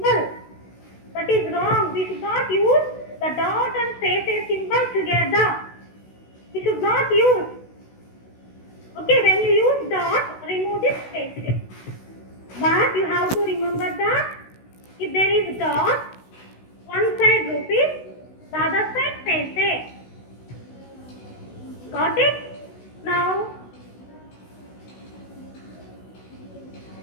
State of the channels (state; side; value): late; right; 16 ms